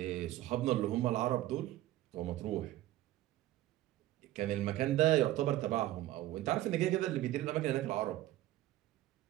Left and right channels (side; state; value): left; quieter; 15.0 dB